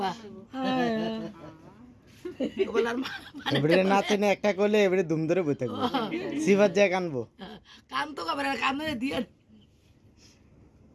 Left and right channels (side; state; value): both; identical; correlation 1.00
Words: বলার এবারে না তেনে একটা করলে এবারে দুম ধরে বই থাকবো সিফাত যায় কানবো কান তো কাবার কান দিয়ে